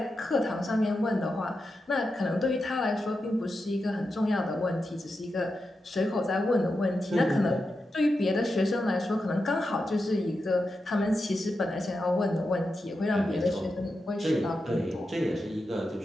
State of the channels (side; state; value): both; normal; correlation 0.89